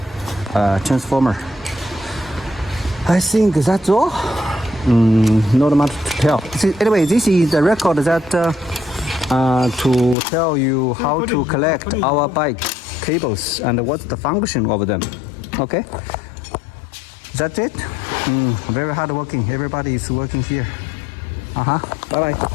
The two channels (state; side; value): drops out; right; at 10.2 s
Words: transformer. I think that's all. Not much to tell. Anyway, this is the record that to tell you how to collect our bike cables and what's the function of them. Okay, that's it. Very hard working. Everybody is working here. Bye bye.